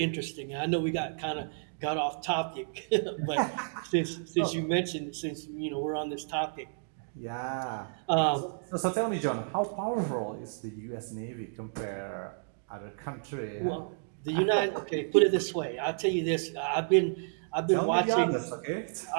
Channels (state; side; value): silent; left; digital silence